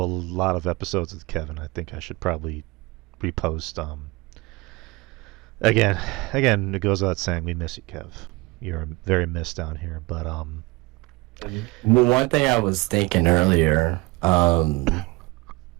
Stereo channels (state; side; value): quieter; left; 23.4 dB